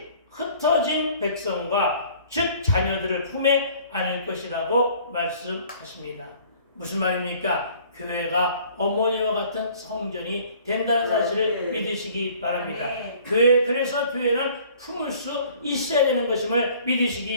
흩어진 백성과 즉 자녀들을 품에 안을 것이라고 말씀하십니다. 무슨 말입니까? 교회가 어머니와 같은 성전이 된다는 사실을 믿으시기 바랍니다. 그래서 교회는 품을 수 있어야 되는 것임을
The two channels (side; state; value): both; inverted; correlation -0.53